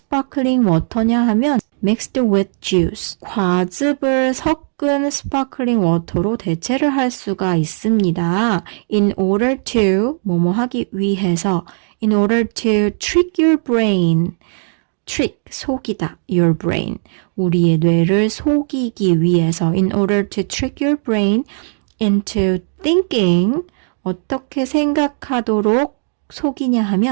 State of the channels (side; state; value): left; silent; 61 dB below the other